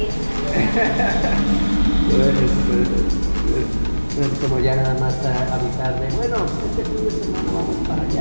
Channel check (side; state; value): both; inverted; correlation -1.00